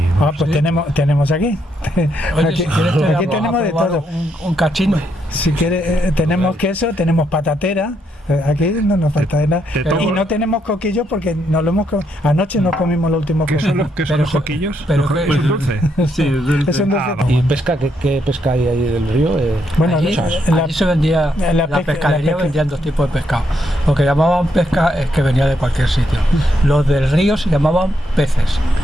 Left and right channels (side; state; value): both; normal; correlation 0.77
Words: pues tenemos aquí. Oye, aquí si quieres tenemos de todo. Un cachino. Si quieres, tenemos queso, tenemos patatera. Aquí no nos falta nada. Y no tenemos coquillos porque anoche nos comimos los últimos coquillos. ¿Qué son los coquillos? Pero ¿Es un dulce? Sí, es dulce. Es un dulce. ¿Y pesca? ¿Qué pesca hay ahí del río? Bueno, allí se vendía, la pescadería vendían 2 tipos de pescado. Lo que llamaban pesca es que venía de cualquier sitio. Los del río se llamaban peces.